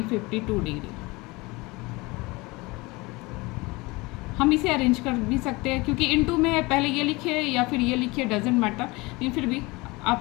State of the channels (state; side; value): quieter; right; 23.7 dB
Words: 52 degree. हम इसे अरेंज कर भी सकते हैं, क्योंकि इंटू में है, पहले ये लिखे या फिर ये लिखे डजेंट मैटर, लेकिन फिर भी आप